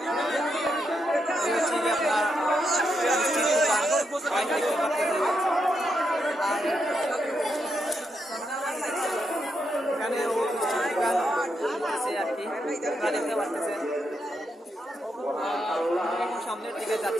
এখানে আছে আর কি, আপনারা দেখতে পাচ্ছেন। সামনের দিকে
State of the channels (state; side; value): normal; both; correlation 0.82